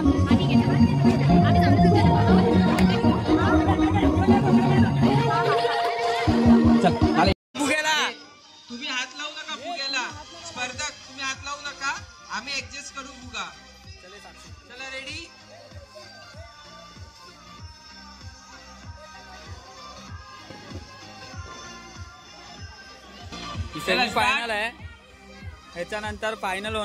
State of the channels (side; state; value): both; identical; correlation 1.00